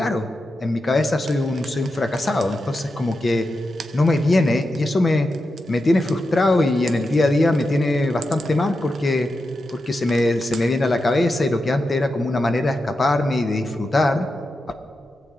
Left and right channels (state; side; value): normal; both; correlation 0.89